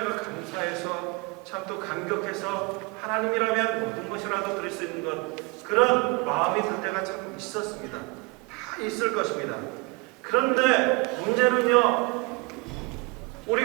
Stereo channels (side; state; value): left; quieter; 27.3 dB